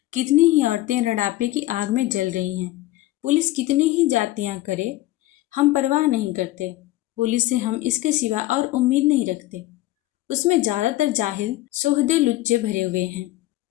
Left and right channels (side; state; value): right; quieter; 16.6 dB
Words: कितनी ही औरतें रड़ापे की आग में जल रही हैं। पुलिस कितनी ही जातियाँ करे, हम परवाह नहीं करते। पुलिस से हम इसके सिवा और उम्मीद नहीं रखते। उसमें ज़्यादातर जाहिल सोहदे लुच्चे भरे हुए हैं।